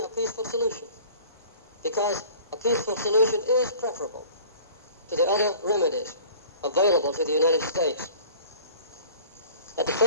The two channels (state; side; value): inverted; both; correlation -0.47